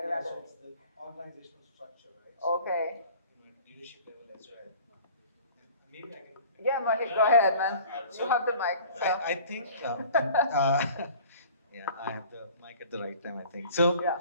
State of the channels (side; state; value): both; inverted; correlation -0.46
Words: around so it. it's the organizational structure, right? So, Okay. leadership level as well. Maybe I can. Yeah, Mohit, go ahead, man. You have the mic. So. I think, yeah, I have the mic at the right time, I think. So, yeah.